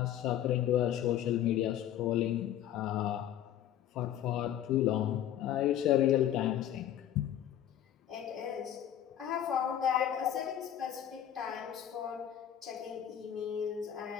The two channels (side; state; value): right; quieter; 10.9 dB